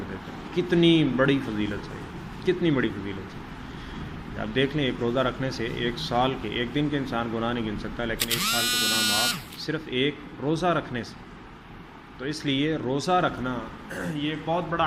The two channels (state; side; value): identical; both; correlation 1.00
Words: دیتا ہے۔ کتنی بڑی فضیلت ہے، کتنی بڑی فضیلت ہے۔ آپ دیکھ لیں، ایک روزہ رکھنے سے 1 سال کے، ایک دن کے انسان گناہ نہیں گن سکتا، لیکن 1 سال کے گناہ معاف صرف ایک روزہ رکھنے سے۔ تو اس لیے روزہ رکھنا یہ ایک بہت